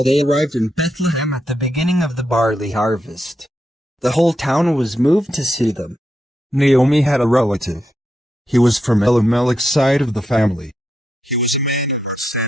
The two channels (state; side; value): normal; both; correlation 0.84